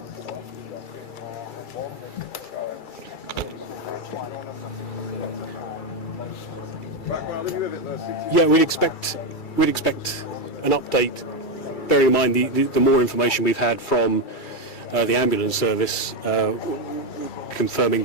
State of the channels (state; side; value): late; right; 2.3 ms